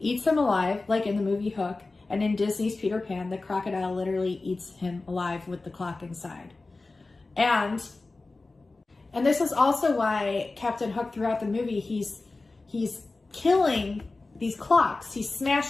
him alive, like in the movie Hook, and in Disney's Peter Pan, the crocodile literally eats him alive with the clock inside. And this is also why Captain Hook throughout the movie, he's killing these clocks. He's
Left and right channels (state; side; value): quieter; right; 3.4 dB